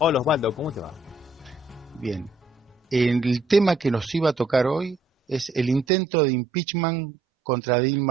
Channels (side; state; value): left; drops out; at 5.9 s